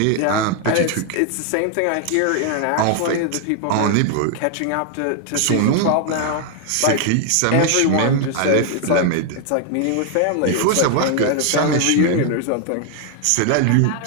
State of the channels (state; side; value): different; both; correlation 0.00